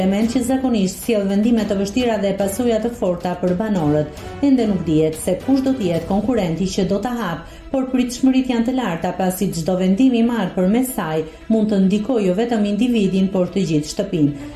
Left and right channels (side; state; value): both; identical; correlation 1.00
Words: që zakonisht sjell vendime të vështira dhe pasoja të forta për banorët. Ende nuk dihet se kush do të jetë konkurrenti që do ta hapë, por pritshmëritë janë të larta pasi çdo vendim i marrë përmes saj mund të ndikojë jo vetëm individin, por të gjithë shtëpinë.